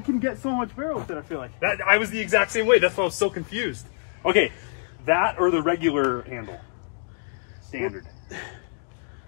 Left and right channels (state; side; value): silent; right; digital silence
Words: get so much barrel with it, I feel like. That I was the exact same way. That's why I was so confused. Okay, that or the regular handle? Standard.